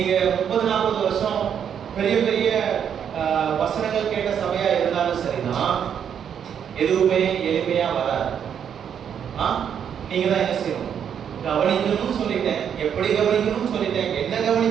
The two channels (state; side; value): quieter; left; 8.3 dB